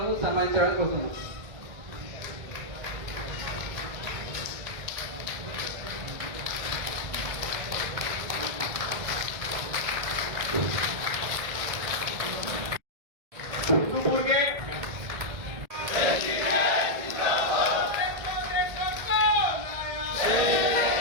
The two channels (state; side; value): late; left; 1.7 ms